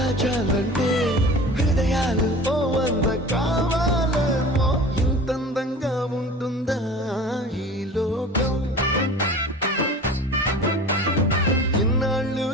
హృదయాలు ఓ వంద కావాలేమో ఇంతందంగా ఉంటుందా ఈ లోకం ఇన్నాళ్ళు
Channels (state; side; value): normal; both; correlation 0.39